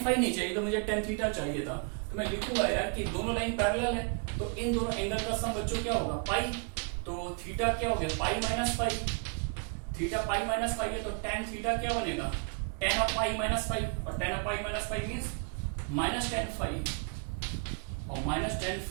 फाई नहीं चाहिए, तो मुझे tan थीटा चाहिए था। तो मैं लिखूंगा यार कि दोनों लाइन पैरेलल है, तो इन दोनों एंगल का सम बच्चों क्या होगा पाई। तो थीटा क्या हो गया pi -phi, theta pi -phi है, तो tan थीटा क्या बनेगा tan ऑफ पाई -फाई, और tan of pi -phi means -tan phi, और -tan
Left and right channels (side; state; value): left; quieter; 36.8 dB